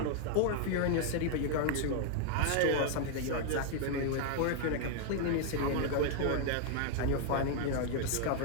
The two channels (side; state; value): both; different; correlation 0.00